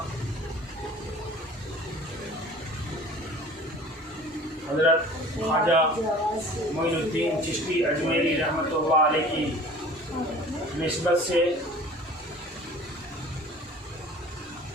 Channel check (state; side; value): normal; both; correlation 0.45